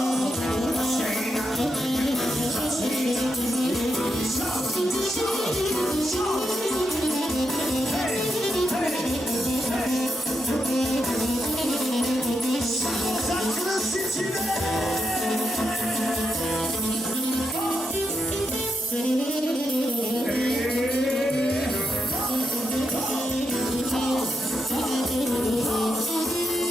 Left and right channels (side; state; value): both; normal; correlation 0.83